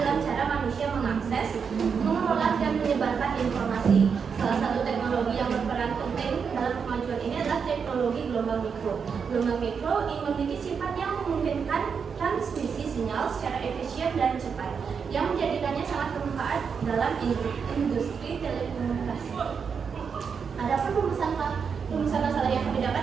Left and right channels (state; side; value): quieter; left; 6.2 dB